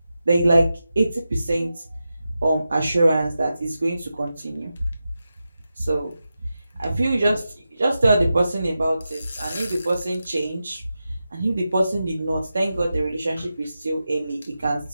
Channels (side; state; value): both; inverted; correlation -0.91